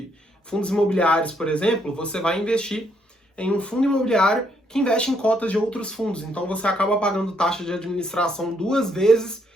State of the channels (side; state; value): both; normal; correlation 0.72